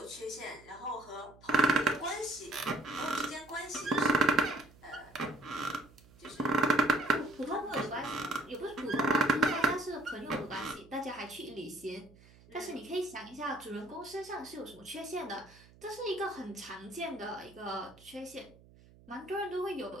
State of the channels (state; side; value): noise; right; hum, 24 dB below the sound